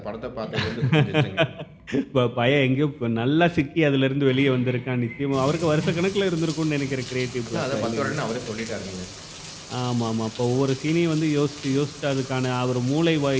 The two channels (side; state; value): both; identical; correlation 1.00